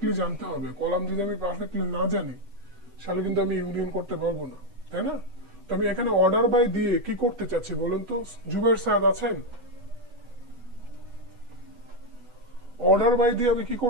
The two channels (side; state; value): left; late; 8.0 ms